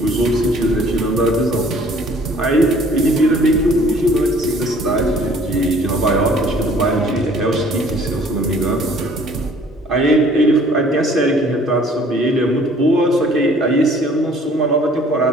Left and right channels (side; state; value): both; normal; correlation 0.55